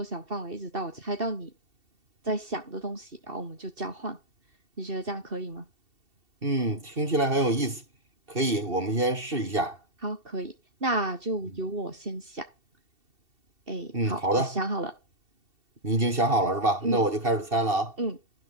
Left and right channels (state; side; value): late; left; 2.7 ms